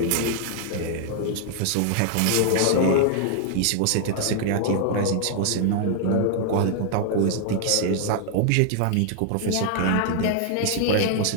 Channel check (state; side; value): different; both; correlation 0.00